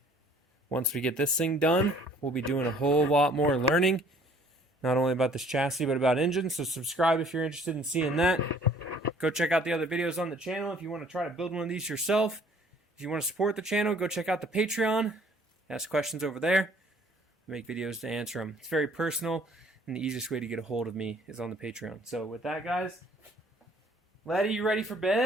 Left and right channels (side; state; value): both; normal; correlation 0.56